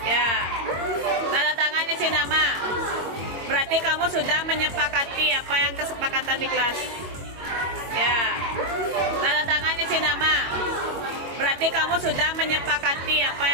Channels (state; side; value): late; left; 22 ms